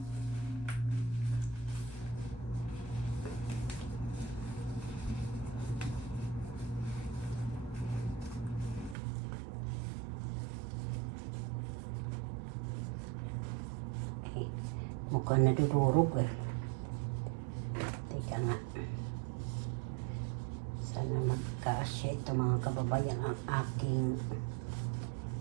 Mukhang nadudurog eh. Teka nga. Sana magkasya ito mga kababayan ang aking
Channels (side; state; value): left; drops out; at 9.0 s